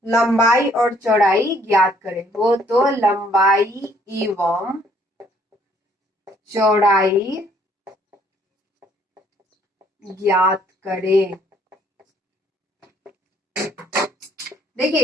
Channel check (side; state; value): both; normal; correlation 0.64